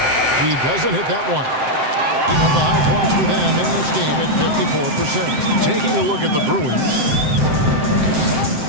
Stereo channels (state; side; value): late; left; 7.7 ms